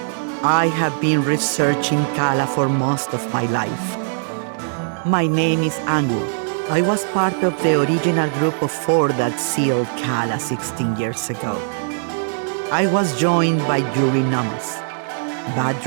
I have been researching Kala for most of my life. My name is Angu. I was part of the original group of 4 that sealed Kala 16 years ago. I was joined by Yuri Namas,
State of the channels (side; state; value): left; silent; digital silence